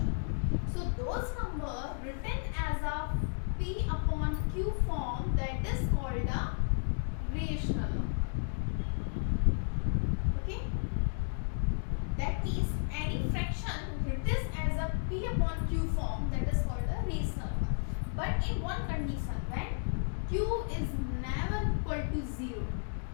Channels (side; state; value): right; silent; digital silence